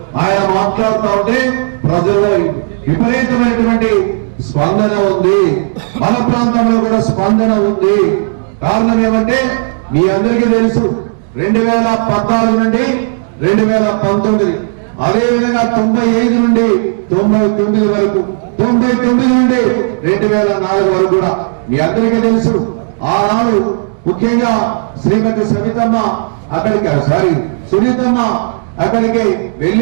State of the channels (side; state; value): left; silent; digital silence